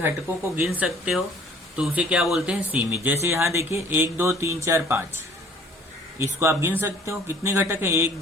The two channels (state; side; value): normal; both; correlation 0.54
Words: को गिन सकते हो तो उसे क्या बोलते हैं? सीमित। जैसे यहाँ देखिए 1 2 3 4 5, इसको आप गिन सकते हो। कितने घटक है? 1